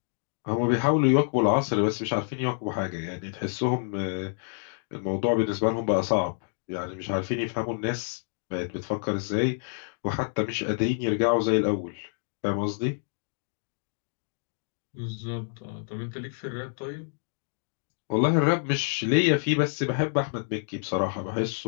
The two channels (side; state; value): right; silent; digital silence